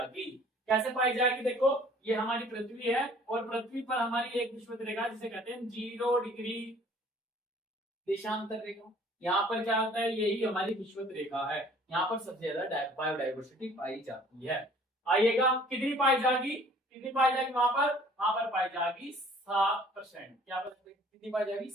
कैसे पाई जाएगी, देखो ये हमारी पृथ्वी है, और पृथ्वी पर हमारी एक विषुवत रेखा, जिसे कहते हैं 0 डिग्री देशांतर रेखा। यहाँ पर क्या होता है, यही हमारी विषुवत रेखा है, यहाँ पर सबसे ज्यादा बायोडाइवर्सिटी पाई जाती है। आइएगा, कितनी पाई जाएगी वहां पर पाई जाएगी 7%। क्या कितनी पाई जाएगी,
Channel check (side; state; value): both; normal; correlation 0.54